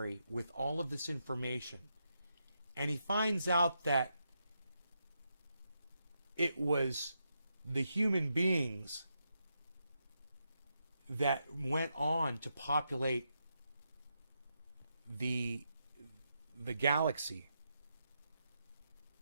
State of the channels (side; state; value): both; inverted; correlation -0.83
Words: with all of this information, and he finds out that it was the human beings that went on to populate the galaxy.